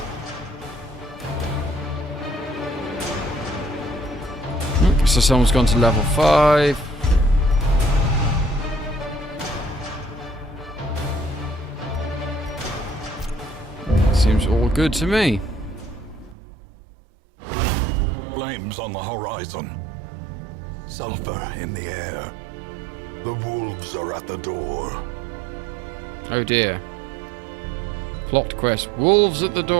So someone's gone to level 5. Seems all good to me. Flames on the horizon. Sulfur in the air. The wolves are at the door. Oh dear. Plot quest. Wolves at the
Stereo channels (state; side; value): drops out; left; at 16.4 s